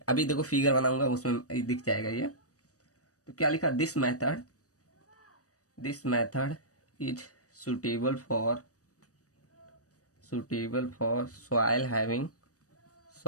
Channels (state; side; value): late; right; 0.66 ms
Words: अभी देखो फिगर बनाऊंगा, उसमें दिख जाएगा ये। तो क्या लिखा? This method is suitable for soil